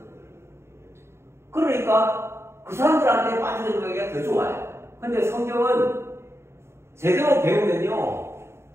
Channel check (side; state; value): left; late; 0.13 ms